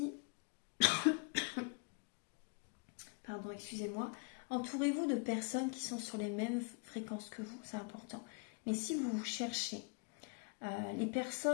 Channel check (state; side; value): quieter; right; 34.4 dB